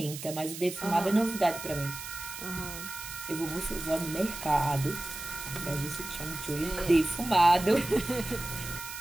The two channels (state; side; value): noise; right; hiss, 10 dB below the sound